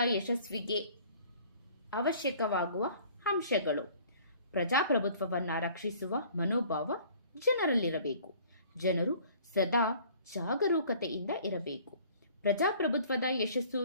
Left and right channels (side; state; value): both; inverted; correlation -0.52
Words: ಯಶಸ್ವಿಗೆ ಅವಶ್ಯಕವಾಗುವ ಅಂಶಗಳು: ಪ್ರಜಾಪ್ರಭುತ್ವವನ್ನು ರಕ್ಷಿಸುವ ಮನೋಭಾವ ಜನರಲ್ಲಿರಬೇಕು. ಜನರು ಸದಾ ಜಾಗರೂಕತೆಯಿಂದ ಇರಬೇಕು. ಪ್ರಜಾಪ್ರಭುತ್ವದ ಯಶಸ್ಸು